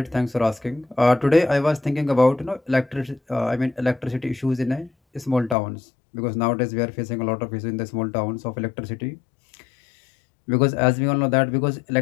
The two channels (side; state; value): right; drops out; at 5.6 s